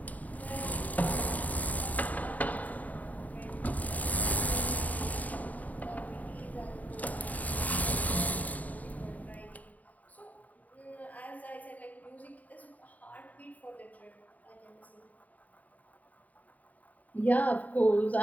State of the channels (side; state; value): right; late; 0.074 ms